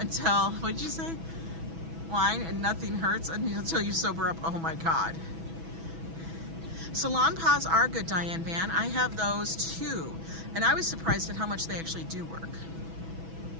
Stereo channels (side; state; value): left; late; 6.1 ms